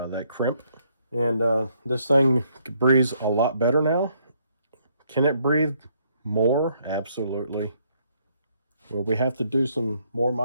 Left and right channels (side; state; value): both; inverted; correlation -0.70